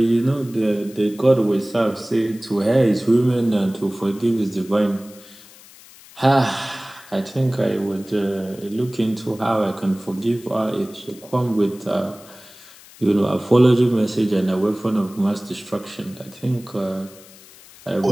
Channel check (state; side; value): noise; left; hiss, 22 dB below the sound